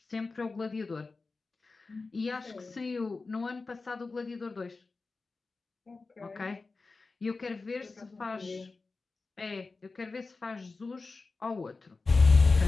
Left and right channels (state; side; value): quieter; right; 3.9 dB